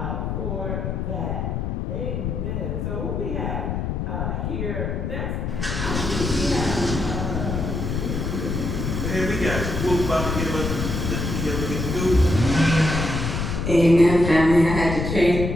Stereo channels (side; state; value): left; noise; rumble, 2 dB below the sound